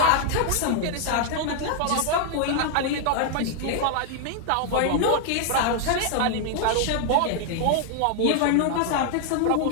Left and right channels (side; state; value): both; different; correlation 0.00